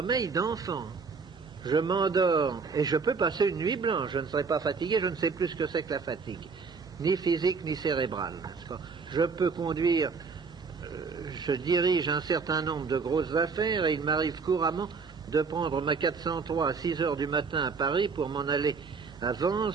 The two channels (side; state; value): left; quieter; 5.0 dB